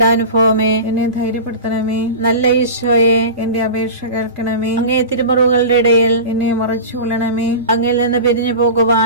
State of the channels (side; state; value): both; inverted; correlation -0.31